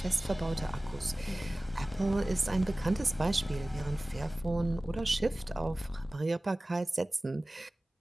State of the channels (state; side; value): normal; both; correlation 0.98